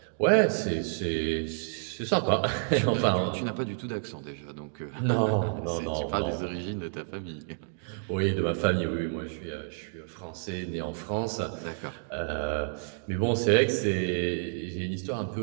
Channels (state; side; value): silent; left; digital silence